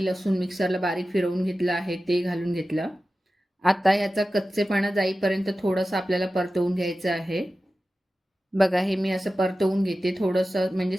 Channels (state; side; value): normal; both; correlation 0.95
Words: लसूण मिक्सरला बारीक फिरवून घेतलं आहे ते घालून घेतलं. आता ह्याचा कच्चेपणा जाईपर्यंत थोडंसं आपल्याला परतवून घ्यायचं आहे. बघा हे मी असं परतवून घेते थोडंसं म्हणजे